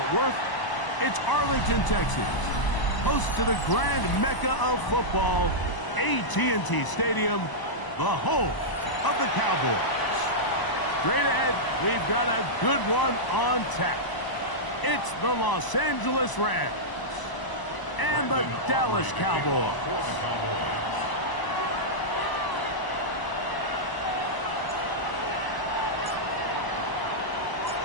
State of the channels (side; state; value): right; late; 1.0 ms